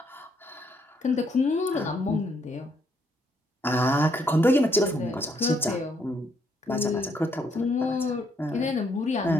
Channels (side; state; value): both; normal; correlation 0.72